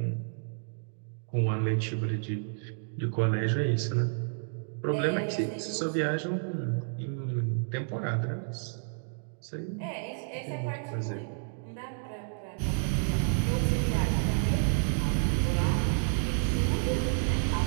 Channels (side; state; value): left; silent; digital silence